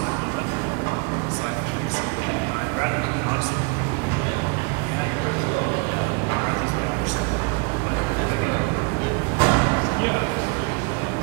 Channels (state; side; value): quieter; left; 32.1 dB